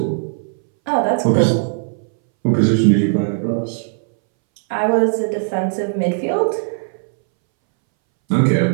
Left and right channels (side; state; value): left; silent; 64 dB below the other